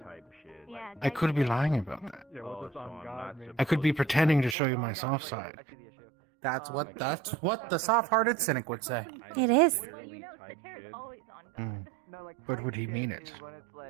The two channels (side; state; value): left; drops out; at 4.5 s